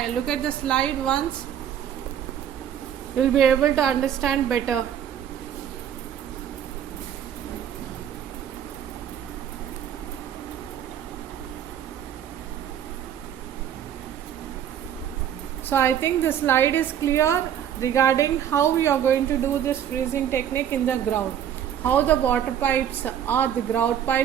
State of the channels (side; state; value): left; quieter; 9.7 dB